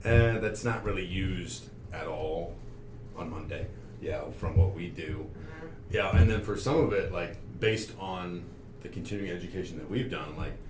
that's not really used at all on Monday. Yeah, from what we do. Mhm. Yeah, and then for some of it, like based on the continuing education that we've done, like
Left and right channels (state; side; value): identical; both; correlation 1.00